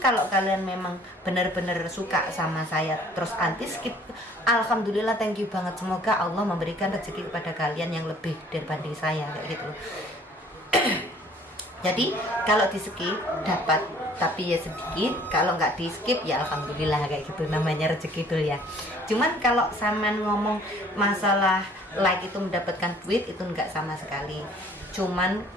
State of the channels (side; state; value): both; normal; correlation 0.55